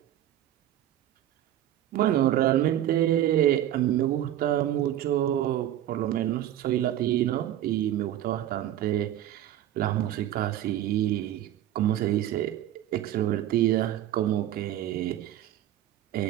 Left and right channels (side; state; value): left; quieter; 12.4 dB